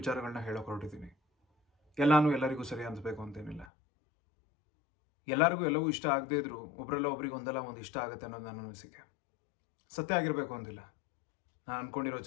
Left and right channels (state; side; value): drops out; right; at 3.7 s